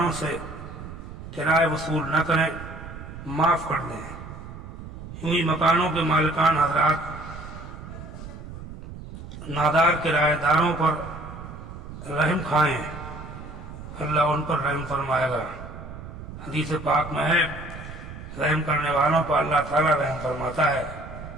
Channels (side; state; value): right; noise; rumble, 12 dB below the sound